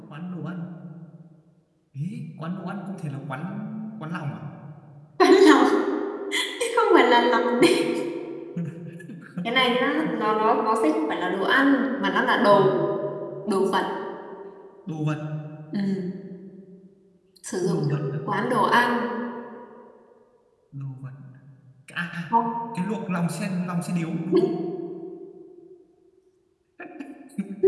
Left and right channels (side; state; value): both; identical; correlation 1.00